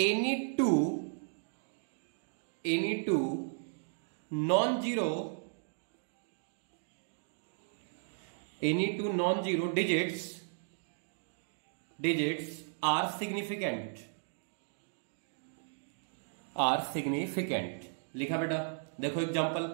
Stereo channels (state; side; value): silent; left; digital silence